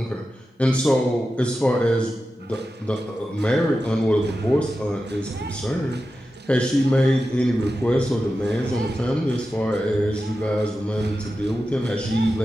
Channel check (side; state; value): both; normal; correlation 0.92